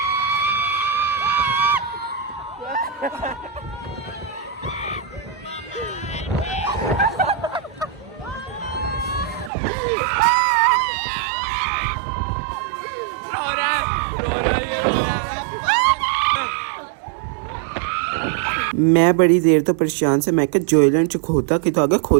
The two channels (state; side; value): drops out; left; at 9.5 s